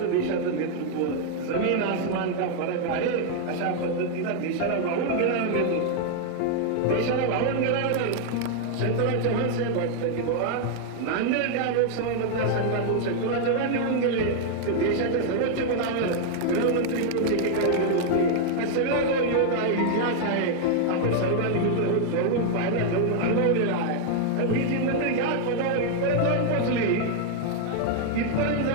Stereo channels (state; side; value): different; both; correlation 0.00